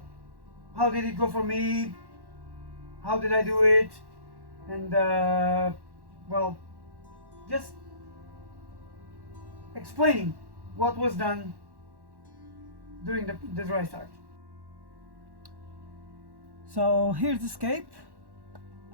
did it go for me? How did I do it? And well, just explaining what was done during the dry start. So here's the scape.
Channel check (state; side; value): late; left; 1.1 ms